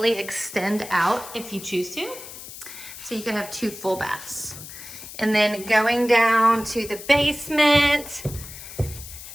extend out if you choose to. So you could have 2 full baths. And then going down to the basement,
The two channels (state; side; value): noise; left; hiss, 13 dB below the sound